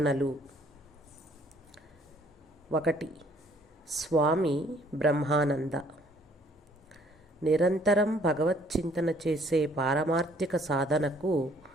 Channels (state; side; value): normal; both; correlation 0.61